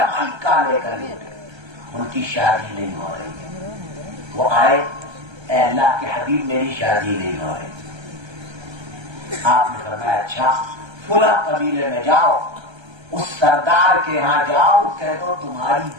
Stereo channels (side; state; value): left; late; 1.3 ms